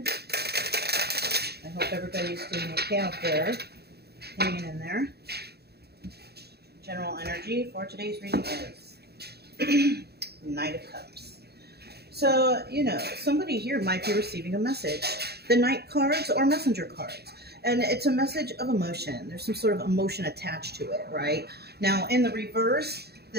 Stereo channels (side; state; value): left; late; 0.47 ms